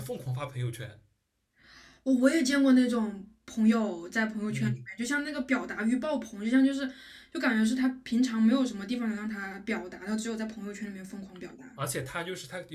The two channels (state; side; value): identical; both; correlation 1.00